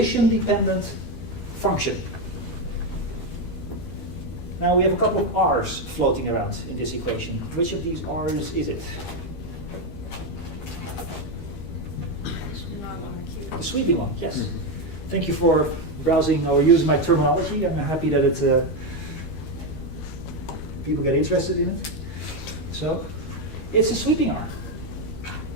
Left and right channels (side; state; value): right; late; 12 ms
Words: function. Now we have a couple of r's floating around in this equation. Which of these r's is it? The sweeping one, yes. Mm-hmm. Thank you for browsing or using my terminology. I'm happy that people get interested in it. So, it's a sweeping R.